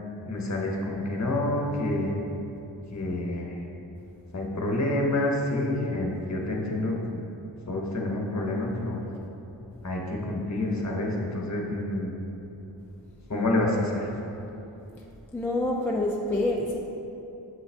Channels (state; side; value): normal; both; correlation 0.47